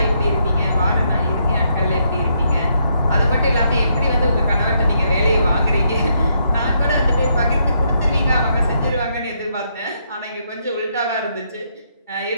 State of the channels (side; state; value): both; inverted; correlation -0.76